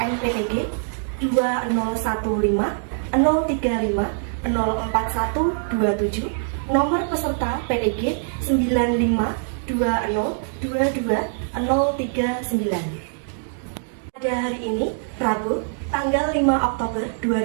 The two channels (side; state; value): left; silent; digital silence